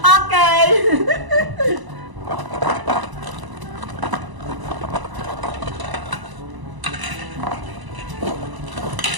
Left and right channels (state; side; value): late; left; 1.0 ms